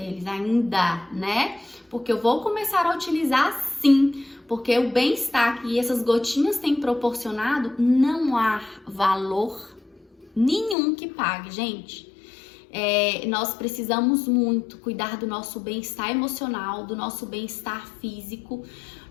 ainda, né? Porque eu vou começar a utilizar sim, porque o bem-estar que essas gotinhas têm proporcionado, não há valor nenhum que pague, gente. Nós precisamos muito cuidar do nosso bem-estar emocional, do nosso bem-estar físico.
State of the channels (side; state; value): right; drops out; at 10.8 s